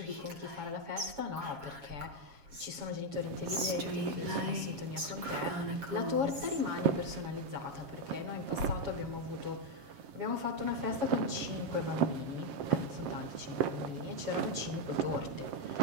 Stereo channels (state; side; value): late; left; 7.3 ms